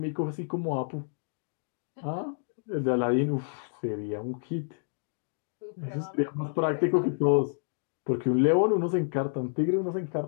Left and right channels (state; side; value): silent; right; digital silence